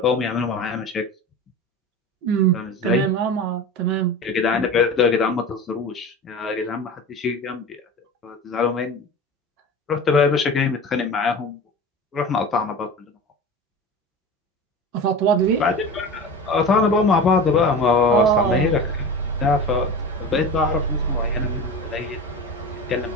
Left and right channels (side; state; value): both; normal; correlation 0.32